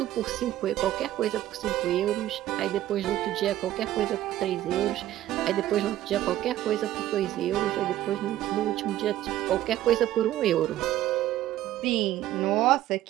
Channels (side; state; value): left; quieter; 13.8 dB